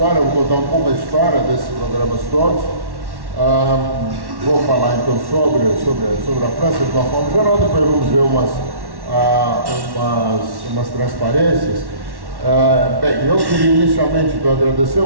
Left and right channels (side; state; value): left; late; 1.1 ms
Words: Eu vou contar um pouco a história desses programas todos. Vou falar então sobre a França de uma forma geral, depois vamos ver umas transparências. Bem, eu queria inicialmente agradecer